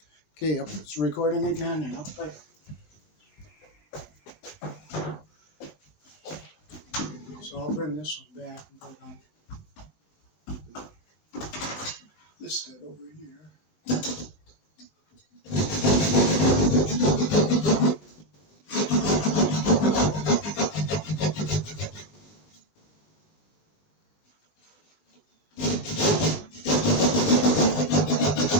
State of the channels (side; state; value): right; late; 19 ms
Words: Okay, yep, it's recording again and up like. So I'll bring this one back and put it on this stud over here.